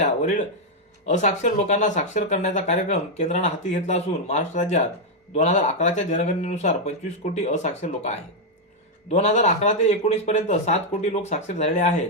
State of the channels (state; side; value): normal; both; correlation 0.00